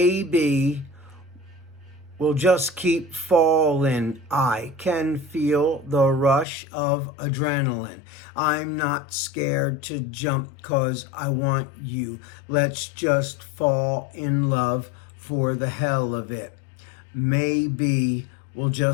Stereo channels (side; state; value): right; drops out; at 6.5 s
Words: we'll just keep falling. I can feel the rush of adrenaline. I'm not scared to jump 'cause I want you. Let's just fall in love for the hell of it. Maybe we'll